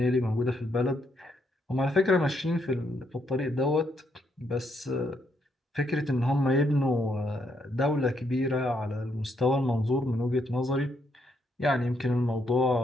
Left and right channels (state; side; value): normal; both; correlation 0.76